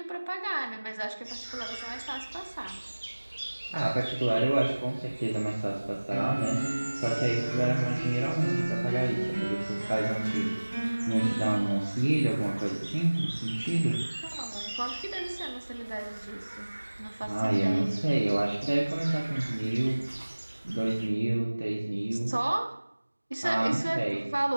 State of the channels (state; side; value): inverted; both; correlation -1.00